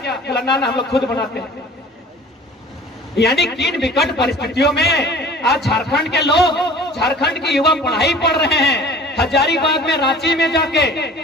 बोला, ना हम लोग खुद बनाते हैं। यानी किन विकट परिस्थितियों में आज झारखंड के लोग, झारखंड के युवा पढ़ाई पढ़ रहे हैं। हजारीबाग में, रांची में जाके,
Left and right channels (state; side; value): normal; both; correlation 0.46